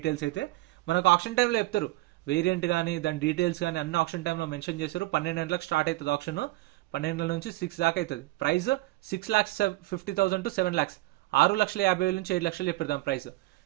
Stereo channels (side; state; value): left; quieter; 20.0 dB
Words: అయితే మనకు ఆప్షన్ టైంలో చెప్తారు. వేరియంట్ కానీ దాని డీటెయిల్స్ కానీ అన్ని ఆప్షన్ టైంలో మెన్షన్ చేశారు. 12 గంటలకు స్టార్ట్ అవుతుంది ఆప్షన్, 12 గంటల నుంచి 6 దాకా అవుతుంది. ప్రైస్ 6,50,000 to 7 lakhs, 6,50,000 నుంచి 7 లక్షలు చెప్పారు దాని ప్రైస్.